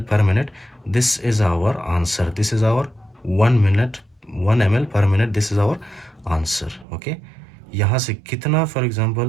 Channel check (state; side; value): drops out; left; at 6.9 s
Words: per minute, this is our answer. This is our 1 ml per minute, this is our answer. Okay, यहाँ से कितना, for